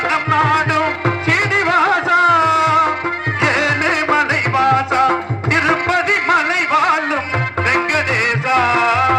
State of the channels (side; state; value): both; identical; correlation 1.00